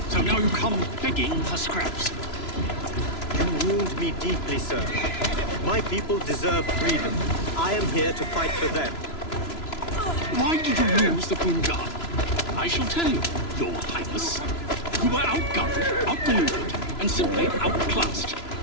So now you come begging for scraps. You wound me deeply, sir. My people deserve freedom. I am here to fight for them. Why did you lose the Punjab? I shall tell you, Your Highness. You were outgunned, outmaneuvered, and simply outclassed.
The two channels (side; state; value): right; late; 3.0 ms